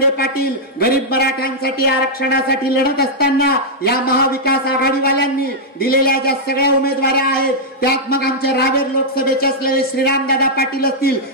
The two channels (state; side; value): normal; both; correlation -0.06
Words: पाटील गरीब मराठ्यांसाठी आरक्षणासाठी लढत असताना या महाविकास आघाडीवाल्यांनी दिलेल्या ज्या सगळ्या उमेदवाऱ्या आहेत त्यात मग आमच्या रावेर लोकसभेचे असलेले श्रीरामदादा पाटील असतील,